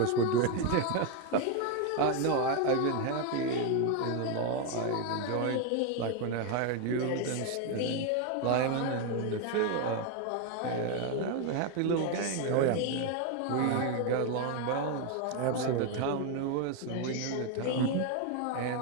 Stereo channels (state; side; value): different; both; correlation 0.01